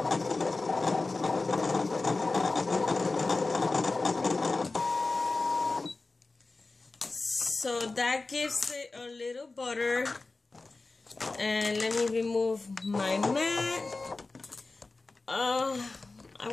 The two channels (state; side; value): quieter; right; 3.5 dB